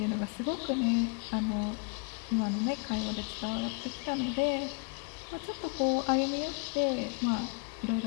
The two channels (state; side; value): quieter; right; 35.7 dB